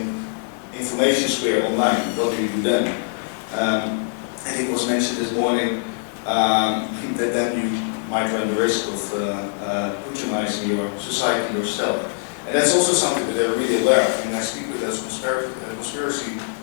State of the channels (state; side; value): silent; right; 64 dB below the other